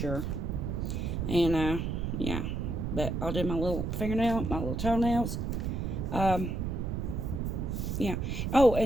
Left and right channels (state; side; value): noise; right; rumble, 2 dB below the sound